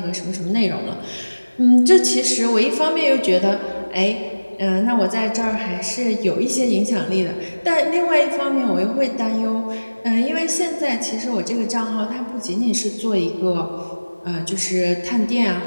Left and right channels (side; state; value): both; inverted; correlation -1.00